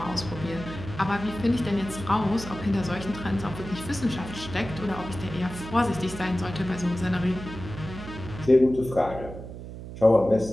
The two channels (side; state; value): right; noise; hum, 11 dB below the sound